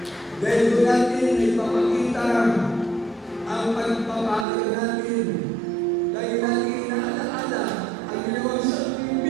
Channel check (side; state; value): left; drops out; at 4.5 s